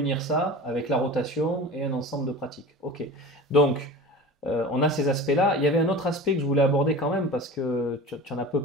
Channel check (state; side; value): normal; both; correlation 0.35